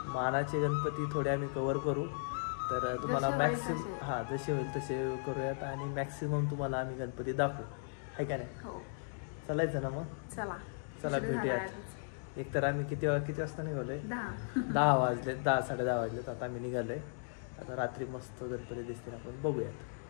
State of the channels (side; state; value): right; silent; digital silence